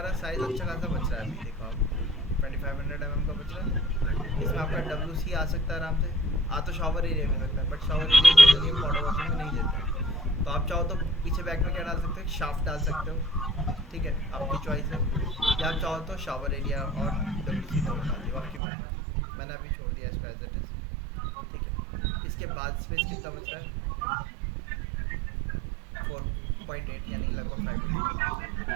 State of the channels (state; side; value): drops out; left; at 18.6 s